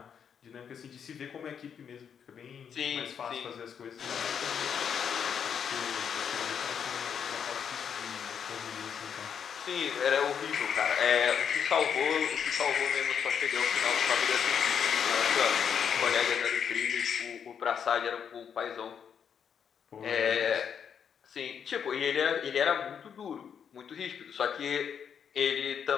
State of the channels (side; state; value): right; quieter; 7.6 dB